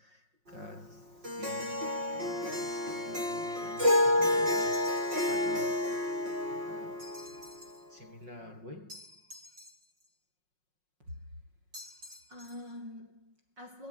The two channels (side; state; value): left; late; 5.5 ms